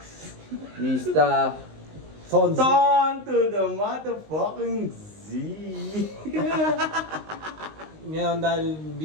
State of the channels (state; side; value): late; left; 19 ms